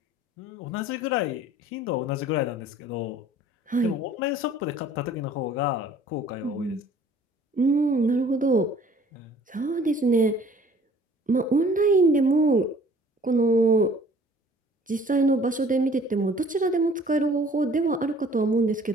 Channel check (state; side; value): normal; both; correlation 0.52